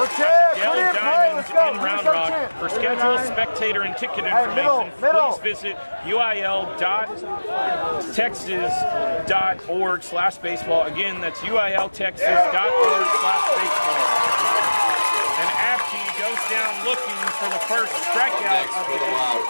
at the Yellow Diamonds in Round Rock. For schedule, spectator, and ticket information, please visit uil.texas.org/baseball. Again, that's uiltexas.org/baseball. And Abkey goes down looking for the first strikeout of the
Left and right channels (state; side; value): inverted; both; correlation -1.00